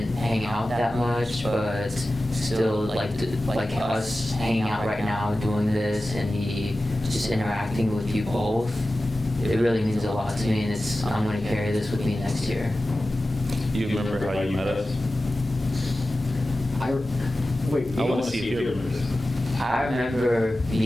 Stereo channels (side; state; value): both; normal; correlation 0.95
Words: hang out that much, but still, like us hanging out right now, doing this, and me just interacting with you both, it really means a lot to me, and I'm going to carry this with me next year. You remember how you met us? Wait, I want to see if you remember this. I remember